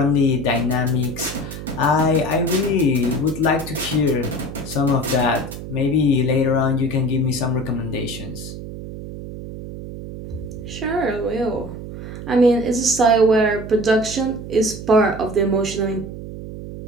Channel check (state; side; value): noise; right; hum, 10 dB below the sound